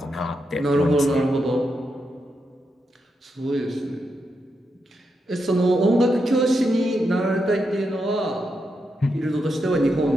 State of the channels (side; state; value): both; normal; correlation 0.84